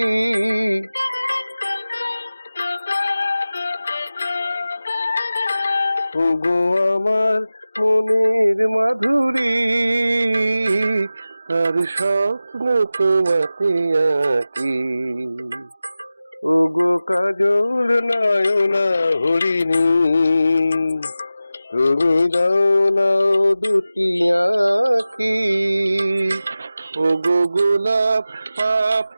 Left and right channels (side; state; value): both; inverted; correlation -0.95